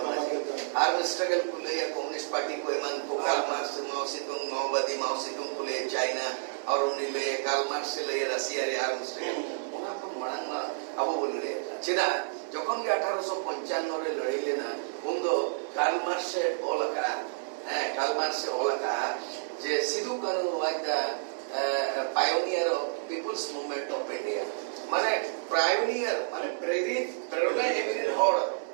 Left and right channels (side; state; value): left; silent; digital silence